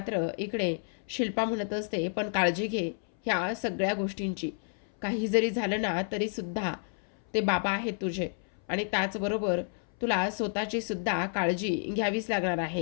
इकडे शिल्पा म्हणत असते, पण काळजी घे ह्या सगळ्या गोष्टींची. काही जरी झालं ना तरीसुद्धा ते बाबा आहेत तुझे आणि त्याचबरोबर तुला स्वतःची सुद्धा काळजी घ्यावीच लागणार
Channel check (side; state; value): right; silent; 58 dB below the other